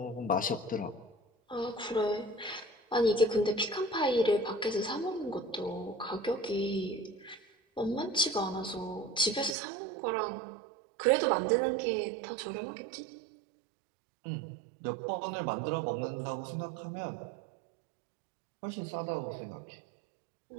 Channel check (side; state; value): left; drops out; at 9.6 s